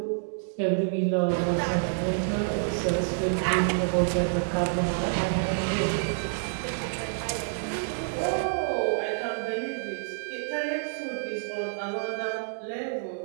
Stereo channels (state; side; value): silent; left; digital silence